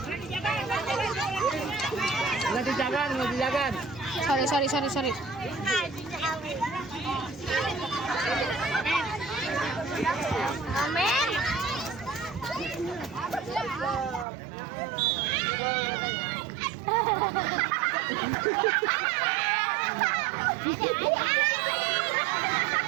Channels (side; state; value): left; drops out; at 14.2 s